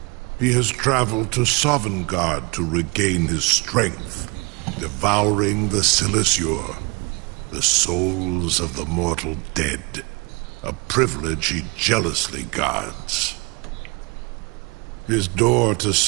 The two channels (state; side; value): quieter; left; 29.3 dB